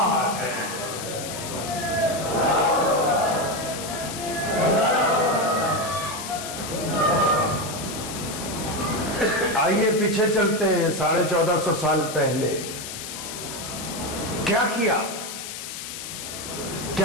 ہے. آئیے پیچھے چلتے ہیں 1450 سال پہلے. کیا کیا کہ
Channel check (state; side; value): noise; left; hiss, 8 dB below the sound